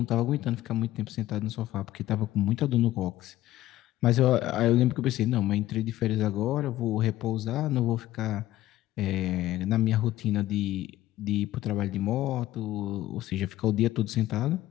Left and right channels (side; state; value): right; quieter; 15.0 dB